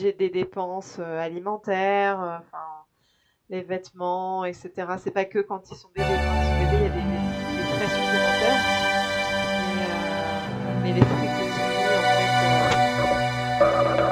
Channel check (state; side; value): identical; both; correlation 1.00